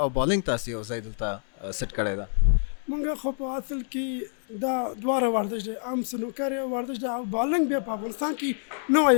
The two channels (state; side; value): silent; right; 60 dB below the other